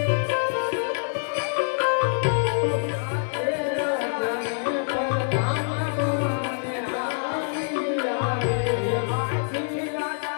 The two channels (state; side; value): silent; right; digital silence